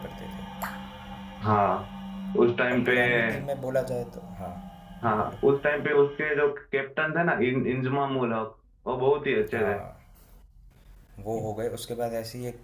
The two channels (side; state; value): both; identical; correlation 1.00